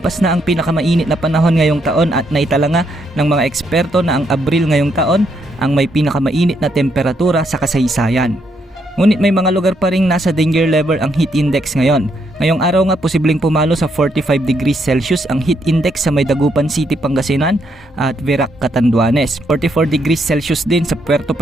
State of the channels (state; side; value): normal; both; correlation 0.75